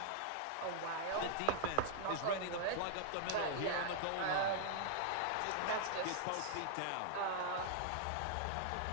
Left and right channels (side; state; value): both; different; correlation -0.01